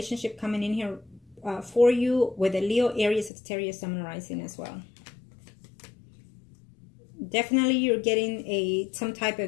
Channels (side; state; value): right; drops out; at 3.3 s